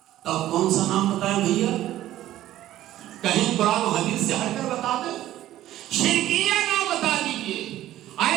تب کون سا نام بتائیں بھیا؟ کہیں قرآن و حدیث سے ہٹ کر بتا دیں. شرکیہ نام بتا دیجئے،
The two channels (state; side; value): quieter; left; 13.8 dB